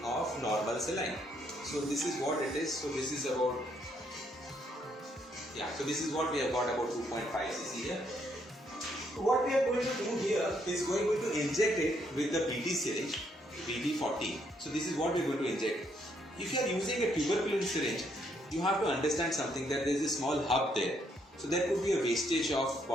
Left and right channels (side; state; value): both; normal; correlation 0.72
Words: of normal saline. So this is what it is. So this is about, yeah, so this is what we have got, about 2.5 cc here. What we are going to do here is going to inject it with the BT syringe, BT40. So this is what we are going to inject. If you are using a tuberculin syringe, you have to understand something, that there is a small hub there. So there could be a wastage of